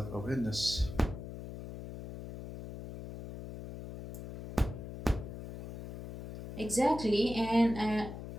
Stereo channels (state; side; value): noise; left; hum, 10 dB below the sound